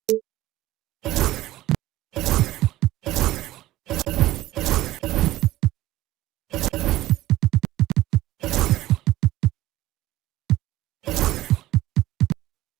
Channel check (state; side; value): quieter; left; 16.0 dB